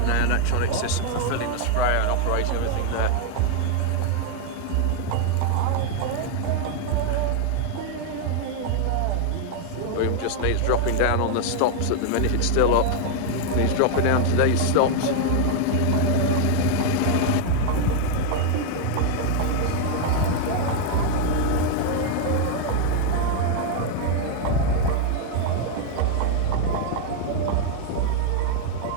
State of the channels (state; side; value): different; both; correlation 0.00